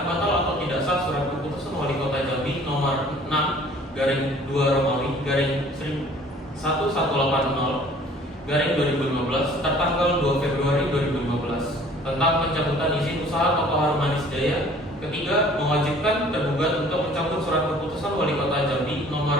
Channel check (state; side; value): normal; both; correlation 0.52